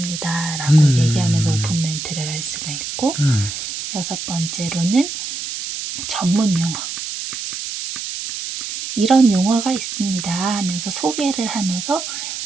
라고 얘기하면서 오픈 멘트를 할 수가 있고 여섯 번째로는 전문 용어. 이런 용어가 있습니다 하면서 소개를 하면서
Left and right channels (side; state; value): right; noise; hiss, 6 dB below the sound